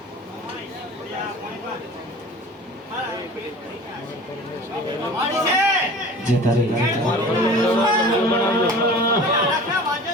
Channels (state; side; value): normal; both; correlation 0.41